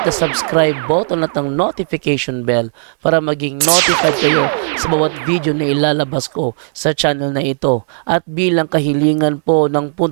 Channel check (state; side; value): silent; left; digital silence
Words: the subscribe button at ang notification bell para maging notified kayo sa bawat video na ilalabas ko sa channel na ito. At bilang kahilingan po ng